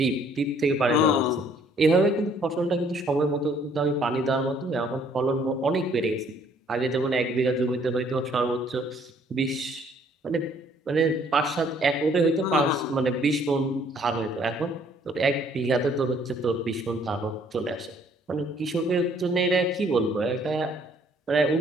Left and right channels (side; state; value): both; normal; correlation 0.62